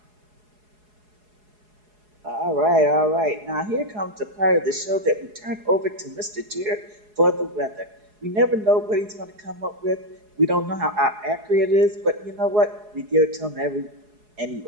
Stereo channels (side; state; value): left; late; 4.8 ms